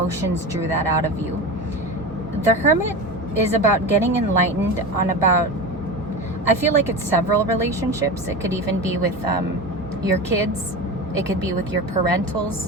drew that out of you. The Hermit is about getting enlightened on about, I feel like it's several relationships. It could even be with your kids. It could be with your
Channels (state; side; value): normal; both; correlation 0.26